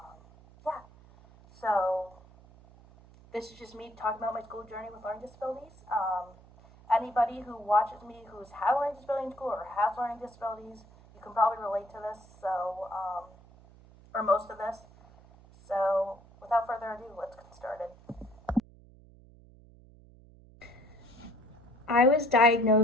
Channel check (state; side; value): noise; right; hum, 23 dB below the sound